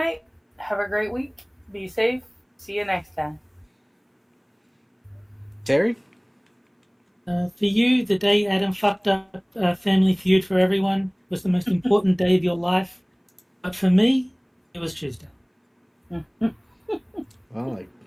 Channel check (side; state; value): both; identical; correlation 1.00